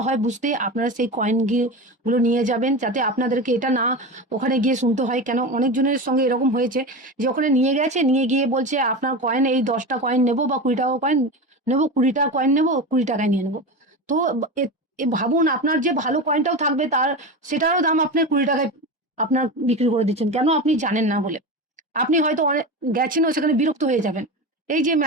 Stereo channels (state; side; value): normal; both; correlation 0.24